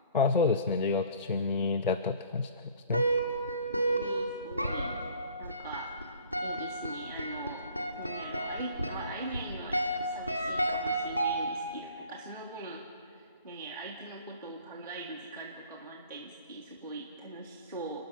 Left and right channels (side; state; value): both; inverted; correlation -0.50